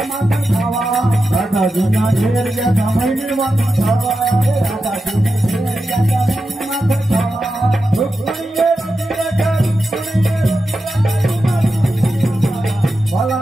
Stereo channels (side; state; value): both; normal; correlation 0.90